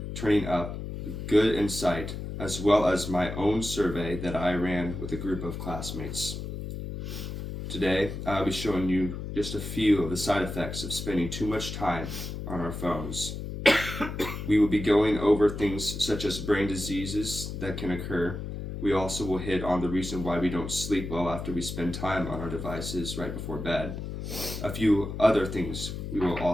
turning up good insight, as well as my own survey that I ran with a group of classmates. Today, I'll be showing you just a few of the side effects of spending too much time on our phones. We will be going over things such as brain diseases that can occur. We also will hit on the reason why we don't sleep well after we spend time on our devices right before bed. A few other things we will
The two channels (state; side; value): noise; left; hum, 7 dB below the sound